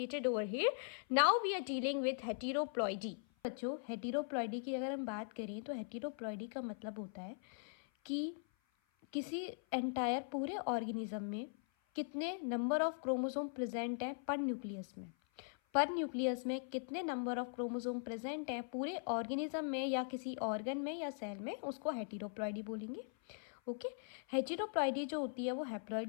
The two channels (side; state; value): right; silent; 51 dB below the other